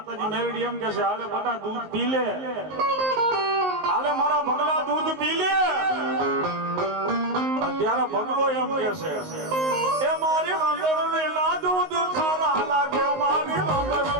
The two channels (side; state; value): left; late; 19 ms